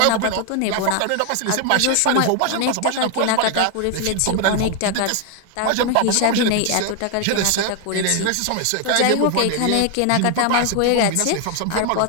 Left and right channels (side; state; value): both; different; correlation 0.00